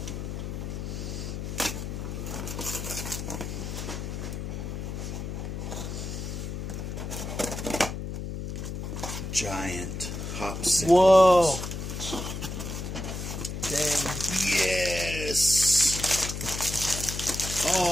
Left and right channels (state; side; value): noise; left; hum, 5 dB below the sound